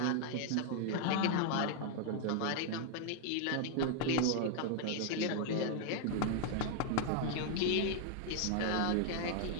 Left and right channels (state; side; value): different; both; correlation 0.00